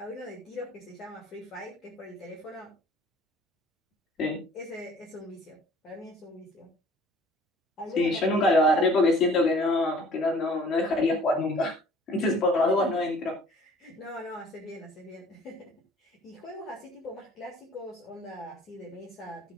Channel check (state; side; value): normal; both; correlation 0.53